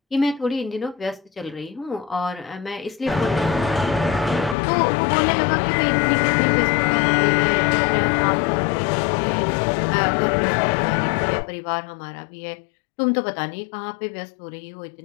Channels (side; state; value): right; drops out; at 4.5 s